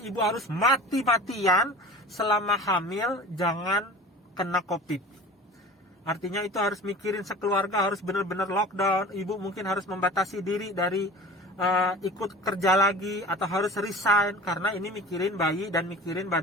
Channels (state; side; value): normal; both; correlation 0.39